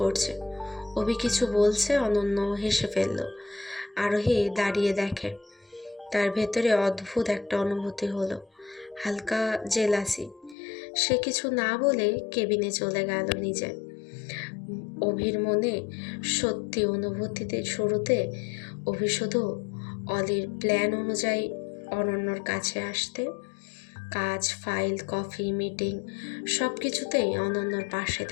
অভি কিছু বলছে, অনন্য হেসে ফেলল। আরোহী দাঁড়িয়ে দেখে, তার ভেতরে অদ্ভুত একটা অনুভূতি হলো, হালকা জেলাসি। সে কিছু না বলে কেবিনে চলে গেল নিজে। অভির মনে সত্যি অনুভূতিতে শুরুতে অভি শুধু অলির প্ল্যান অনুযায়ী অনন্যর কাছে আসতে, কাজ, ফাইল, কফি, মিটিং সব কিছুতেই অনন্যর পাশে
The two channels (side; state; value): right; drops out; at 10.6 s